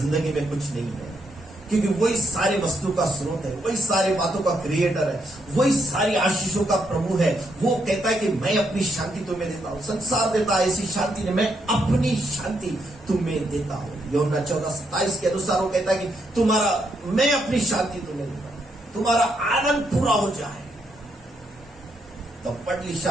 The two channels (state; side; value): normal; both; correlation 0.77